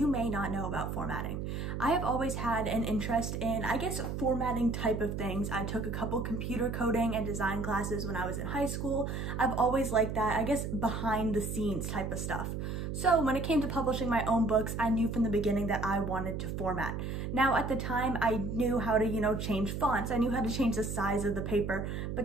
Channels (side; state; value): right; noise; hum, 4 dB below the sound